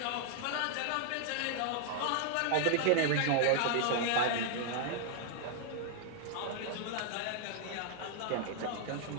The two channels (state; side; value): different; both; correlation 0.00